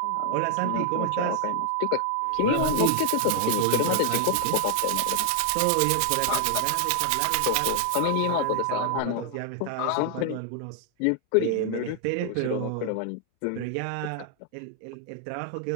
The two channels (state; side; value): different; both; correlation 0.00